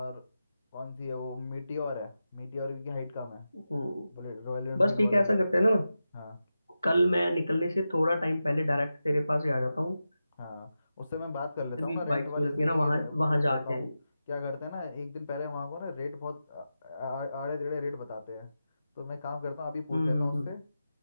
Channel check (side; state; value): both; inverted; correlation -0.91